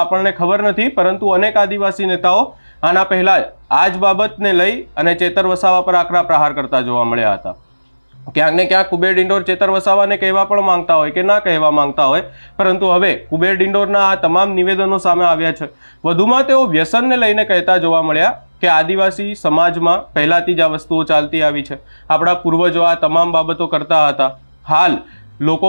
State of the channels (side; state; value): both; inverted; correlation -1.00